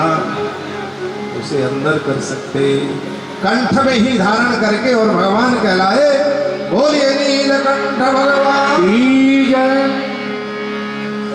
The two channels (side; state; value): both; identical; correlation 1.00